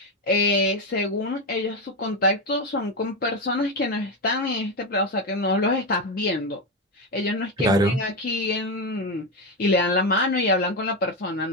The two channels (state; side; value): normal; both; correlation 0.12